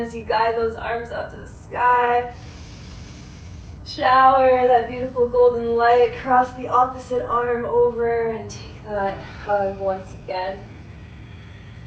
you guide those arms up to the sky. Shower that beautiful golden light, cross the opposite arm over and take that hug once again.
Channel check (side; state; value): both; identical; correlation 1.00